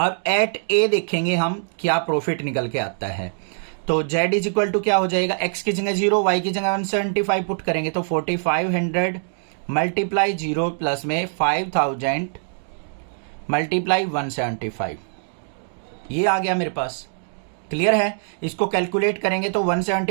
एट ए देखेंगे हम क्या प्रॉफिट निकल के आता है। तो z इज इक्वल टू क्या हो जाएगा? x की जगह 0, y की जगह 175 पुट करेंगे, तो 4500 मल्टीप्लाई 0 प्लस में 5000 मल्टीप्लाई 175, ये आ गया मेरे पास। क्लियर है? इसको कैलकुलेट करेंगे तो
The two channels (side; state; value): left; silent; digital silence